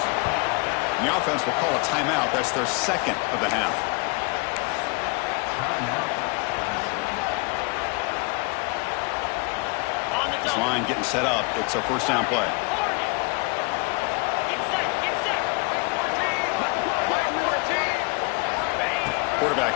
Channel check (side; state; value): right; quieter; 30.3 dB